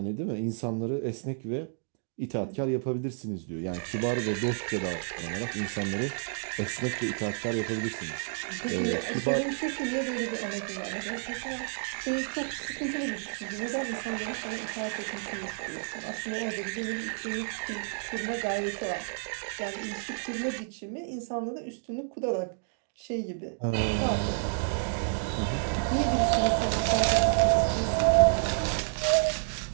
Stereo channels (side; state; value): left; silent; digital silence